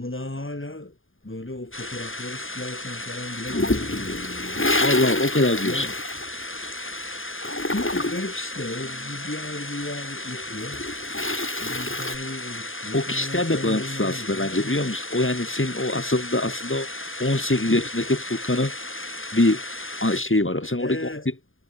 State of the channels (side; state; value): right; late; 0.59 ms